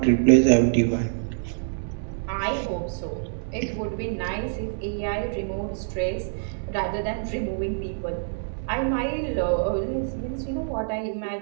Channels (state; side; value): silent; left; 61 dB below the other